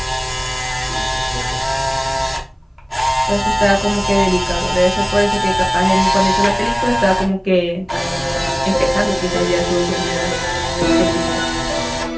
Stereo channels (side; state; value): both; identical; correlation 1.00